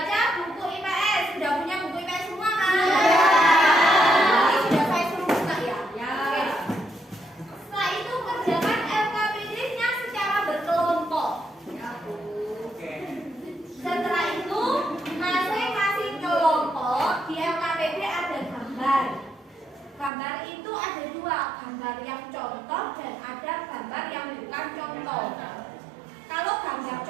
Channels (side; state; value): left; drops out; at 20.1 s